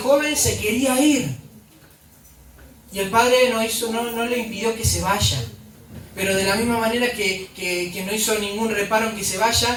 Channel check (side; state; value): both; identical; correlation 1.00